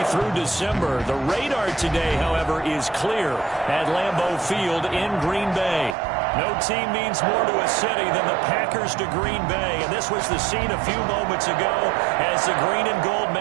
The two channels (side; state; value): left; drops out; at 6.0 s